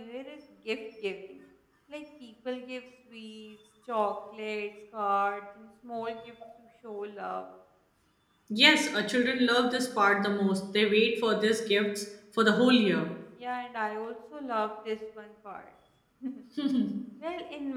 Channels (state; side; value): identical; both; correlation 1.00